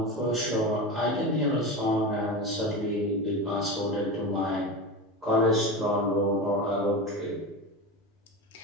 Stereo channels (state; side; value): normal; both; correlation 0.23